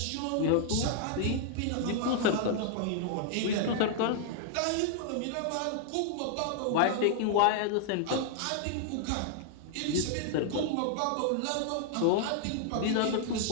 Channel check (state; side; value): different; both; correlation -0.01